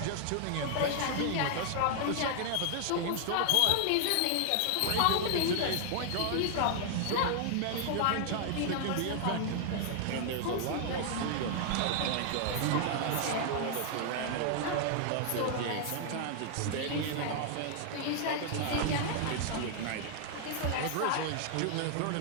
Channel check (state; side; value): different; both; correlation 0.00